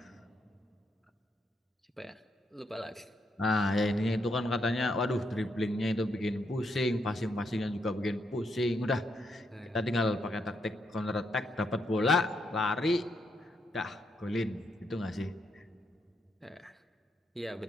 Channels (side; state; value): both; normal; correlation 0.78